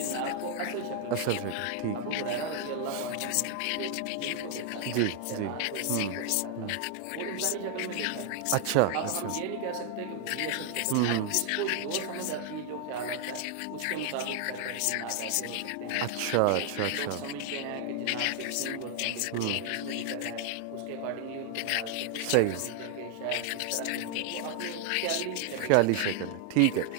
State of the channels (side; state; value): both; different; correlation 0.00